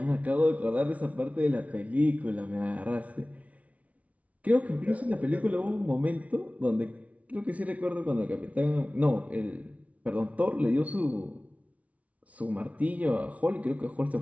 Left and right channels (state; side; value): late; left; 0.067 ms